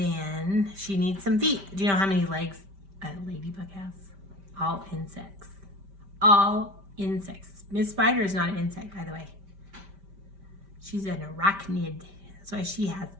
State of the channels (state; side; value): late; left; 5.1 ms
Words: she needs some feet. Do you know how many legs a ladybug has? All insects. All insects. Miss Spider is not an insect, by the way. She's an arachnid. That's why she has